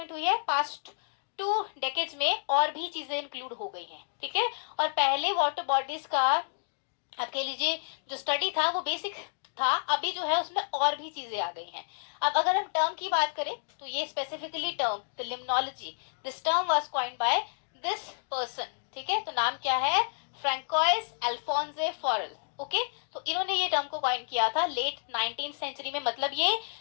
हुई है past 2 डेकेड्स में और भी चीजें इंक्लूड हो गई हैं. ठीक है, और पहले वाटर बॉडीज का आप कह लीजिए जो स्टडी था वो बेसिक था, अभी जो है उसमें और भी चीजें आ गई हैं. अब अगर हम टर्म की बात करें तो ये specifically term the limnology, this term was coined by this person. ठीक है, तो नाम क्या है? फ्रैंकोइस अल्फोंसे फॉरेल. ओके, तो इन्होंने ये टर्म को कॉइन किया था लेट 19th सेंचुरी में. मतलब ये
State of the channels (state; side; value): silent; right; digital silence